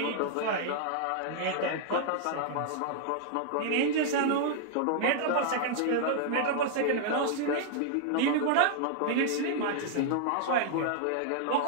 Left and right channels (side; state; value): both; different; correlation -0.01